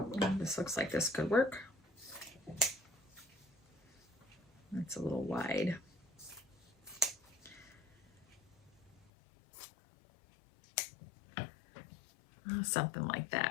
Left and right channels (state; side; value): drops out; right; at 9.1 s